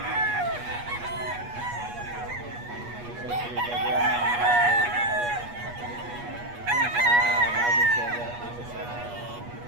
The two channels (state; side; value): late; left; 8.3 ms